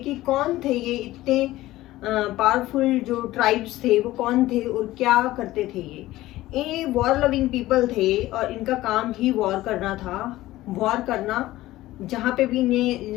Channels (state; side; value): quieter; right; 16.5 dB